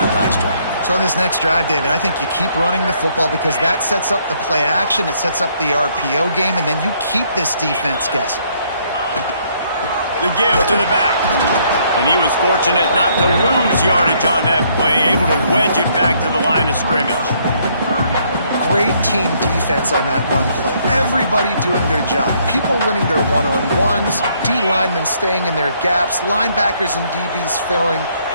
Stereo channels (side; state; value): both; inverted; correlation -0.68